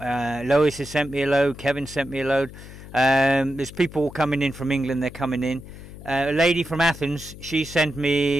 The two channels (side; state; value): left; noise; hum, 16 dB below the sound